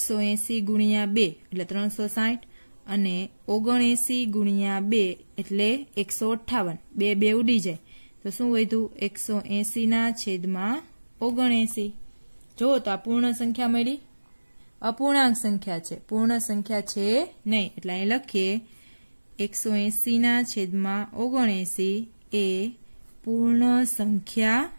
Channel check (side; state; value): both; inverted; correlation -1.00